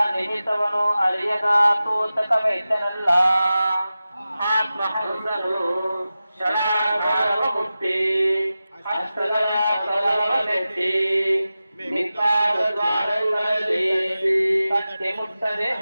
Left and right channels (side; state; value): both; inverted; correlation -0.94